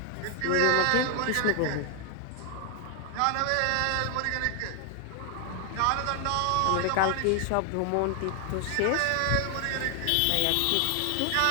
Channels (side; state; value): both; different; correlation 0.00